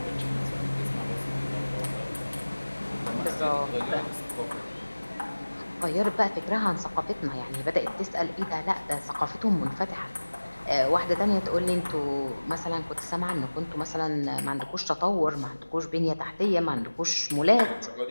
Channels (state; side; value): inverted; both; correlation -1.00